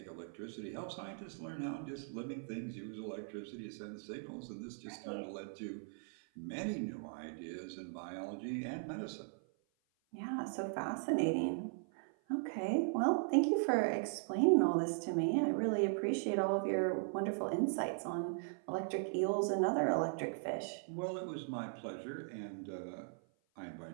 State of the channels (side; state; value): left; silent; 52 dB below the other